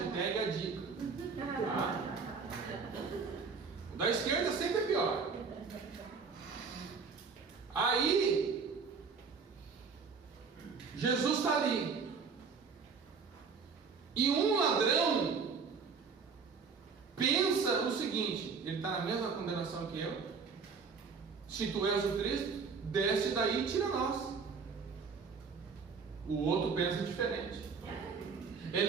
a dica. Tá? O da esquerda sempre é pior. Aí Jesus está ali. E um ladrão pensa o seguinte: ele está na mesma condenação que eu. Se tu és o Cristo, desce daí e tira nós. O outro pensa diferente.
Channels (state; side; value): quieter; left; 5.3 dB